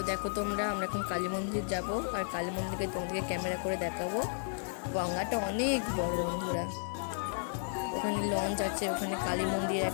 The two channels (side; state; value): right; silent; digital silence